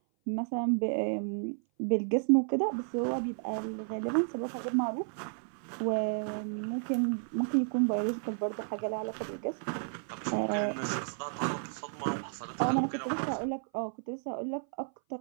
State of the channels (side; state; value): left; silent; 56 dB below the other